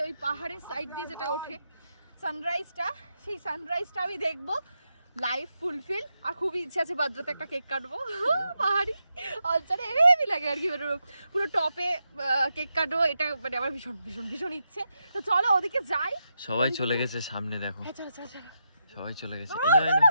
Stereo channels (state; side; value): inverted; both; correlation -0.85